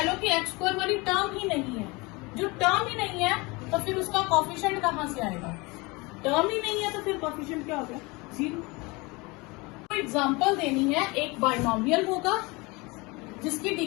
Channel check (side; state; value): right; quieter; 25.3 dB